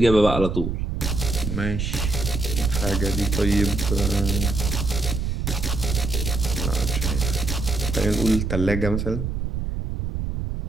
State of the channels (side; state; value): right; noise; rumble, 2 dB below the sound